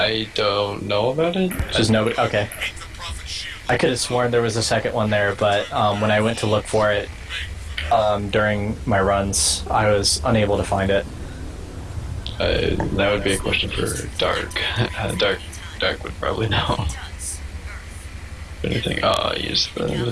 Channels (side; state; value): both; identical; correlation 1.00